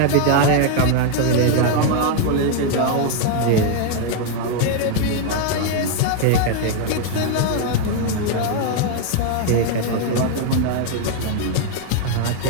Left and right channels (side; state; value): both; different; correlation 0.00